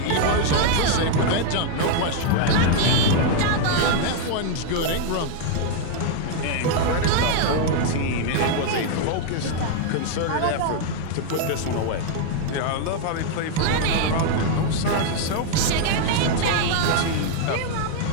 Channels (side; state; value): both; different; correlation 0.00